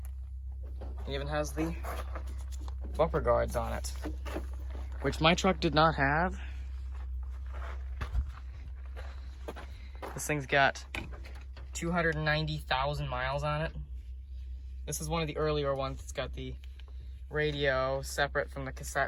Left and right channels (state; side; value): identical; both; correlation 1.00